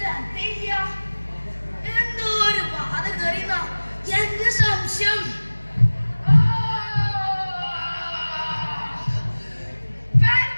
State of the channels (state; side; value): inverted; both; correlation -1.00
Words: എന്തോ ഒരു ബാധ കയറിയുന്ന എന്റെ സംശയം.